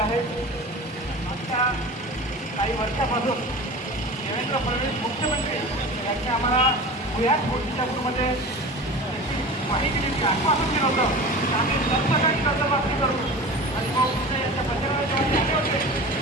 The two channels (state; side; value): normal; both; correlation 0.35